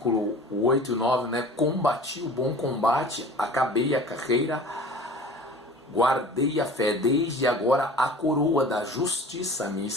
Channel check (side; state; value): both; normal; correlation 0.42